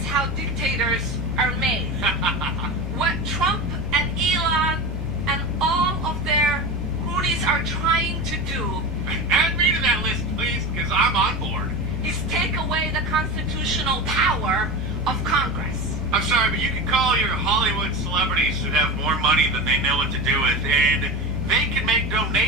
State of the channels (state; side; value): normal; both; correlation 0.25